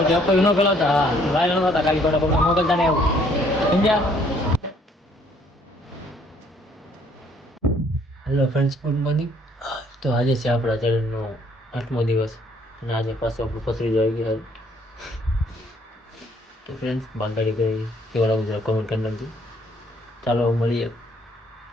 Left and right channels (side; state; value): both; normal; correlation 0.63